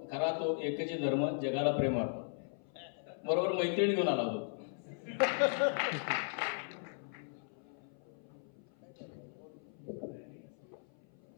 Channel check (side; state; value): right; silent; 53 dB below the other